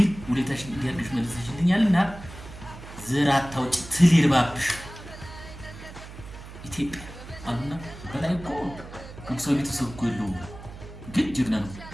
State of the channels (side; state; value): right; noise; hum, 14 dB below the sound